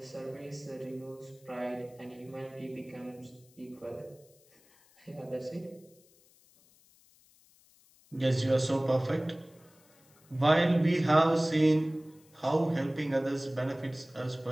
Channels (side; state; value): left; noise; hiss, 30 dB below the sound